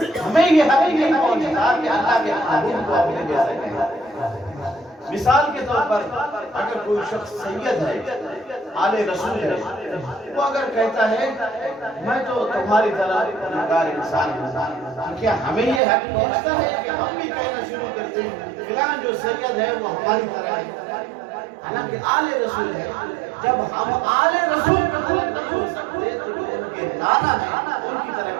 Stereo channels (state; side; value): drops out; left; at 15.8 s